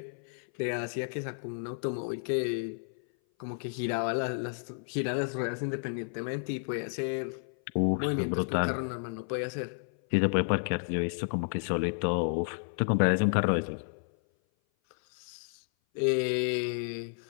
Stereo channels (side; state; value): right; silent; 56 dB below the other